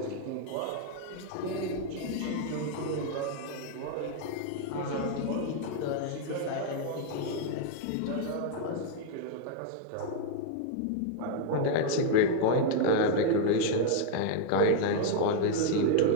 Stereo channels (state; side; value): different; both; correlation 0.00